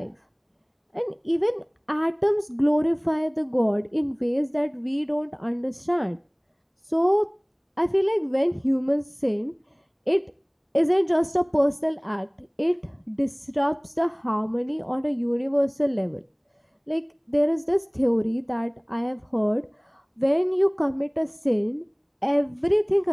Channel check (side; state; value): both; identical; correlation 1.00